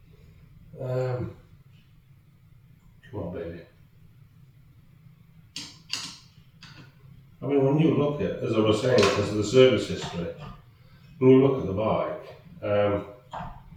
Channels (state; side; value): identical; both; correlation 1.00